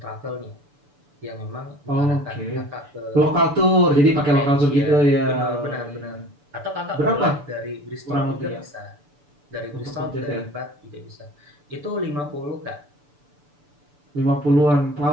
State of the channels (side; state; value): left; late; 6.9 ms